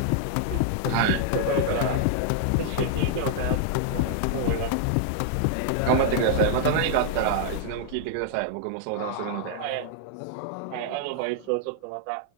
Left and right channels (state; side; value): different; both; correlation -0.01